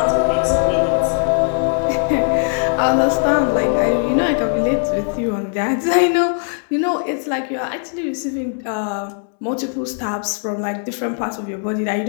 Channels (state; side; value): silent; right; 60 dB below the other